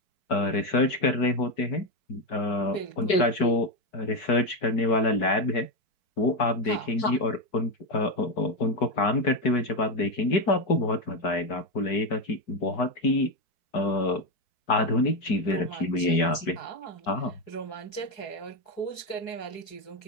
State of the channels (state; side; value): late; right; 4.6 ms